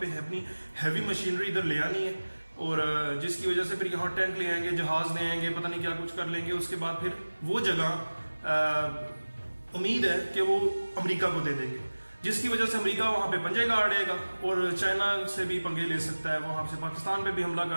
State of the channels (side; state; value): both; inverted; correlation -1.00